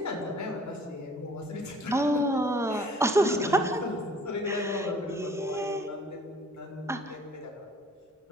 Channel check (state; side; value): normal; both; correlation 0.54